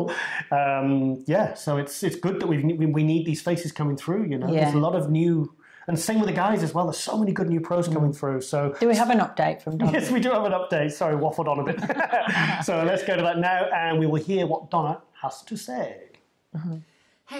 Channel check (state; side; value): identical; both; correlation 1.00